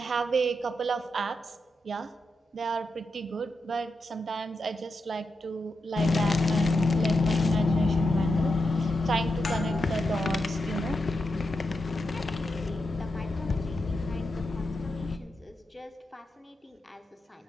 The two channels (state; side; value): normal; both; correlation 0.86